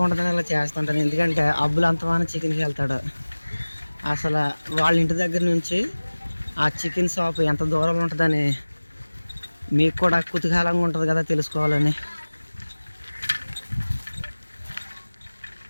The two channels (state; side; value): inverted; both; correlation -1.00